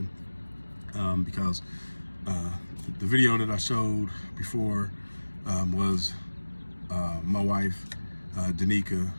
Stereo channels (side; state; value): both; inverted; correlation -1.00